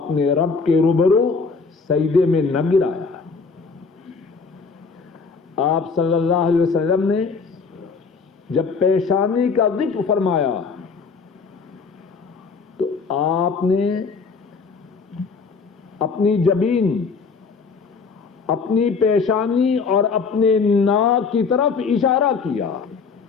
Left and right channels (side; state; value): right; quieter; 4.9 dB